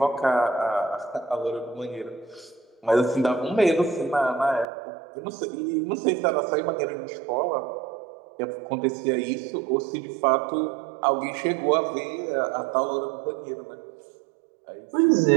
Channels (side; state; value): left; drops out; at 4.7 s